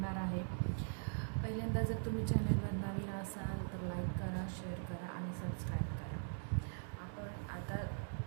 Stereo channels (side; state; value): left; silent; digital silence